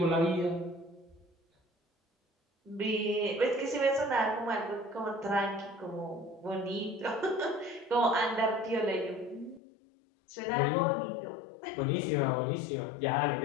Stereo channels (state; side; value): drops out; right; at 9.6 s